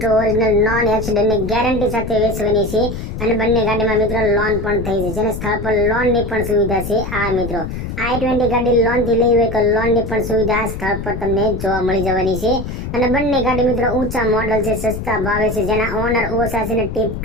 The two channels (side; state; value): left; noise; rumble, 7 dB below the sound